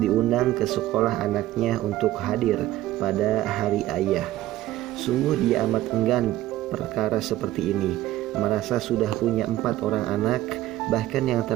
ke sekolah anaknya untuk hadir pada hari ayah. Sungguh dia amat enggan perkara seperti ini, merasa sudah punya 4 orang anak, bahkan yang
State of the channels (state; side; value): quieter; left; 14.9 dB